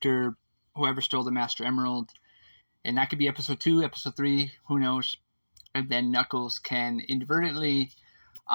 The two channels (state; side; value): inverted; both; correlation -1.00